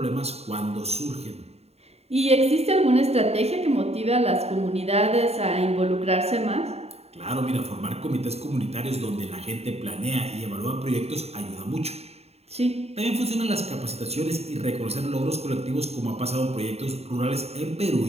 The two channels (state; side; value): late; left; 0.30 ms